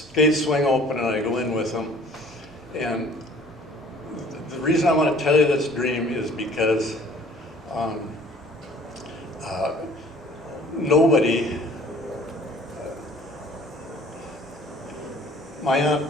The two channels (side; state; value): both; normal; correlation 0.52